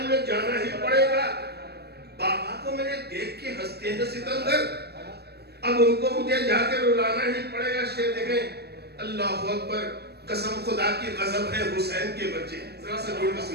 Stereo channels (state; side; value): late; left; 0.47 ms